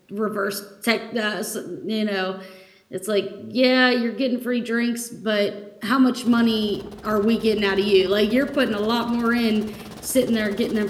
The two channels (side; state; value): both; identical; correlation 1.00